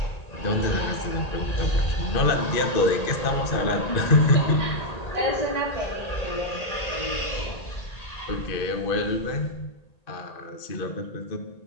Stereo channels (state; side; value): late; right; 1.8 ms